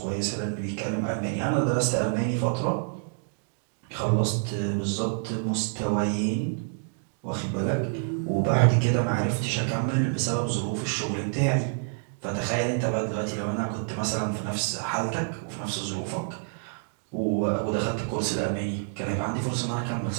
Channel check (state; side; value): silent; left; digital silence